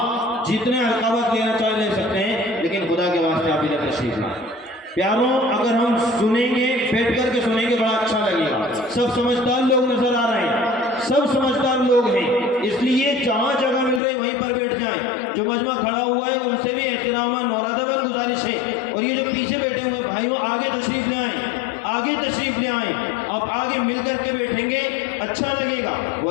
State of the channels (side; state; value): right; drops out; at 14.0 s